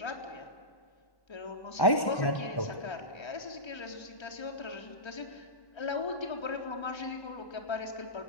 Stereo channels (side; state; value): right; late; 1.1 ms